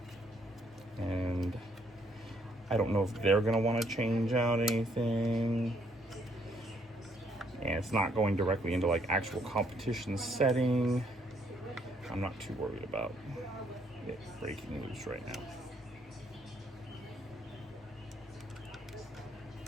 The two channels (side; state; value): both; normal; correlation 0.69